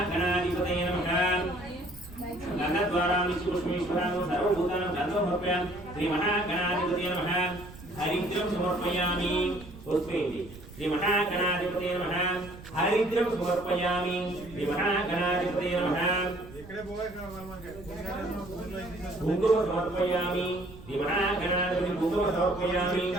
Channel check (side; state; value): right; noise; rumble, 17 dB below the sound